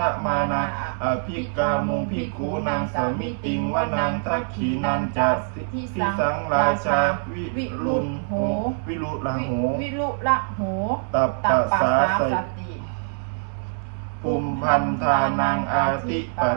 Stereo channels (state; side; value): silent; left; digital silence